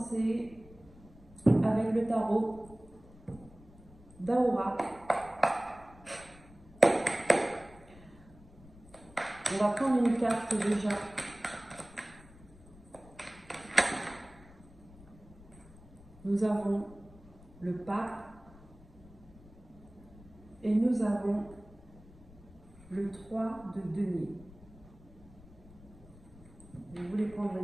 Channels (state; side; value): noise; left; rumble, 22 dB below the sound